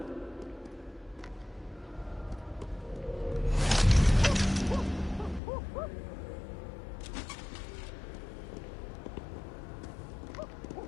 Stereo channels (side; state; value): right; drops out; at 5.4 s